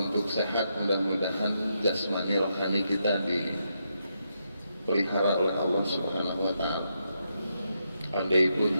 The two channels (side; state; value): both; inverted; correlation -0.82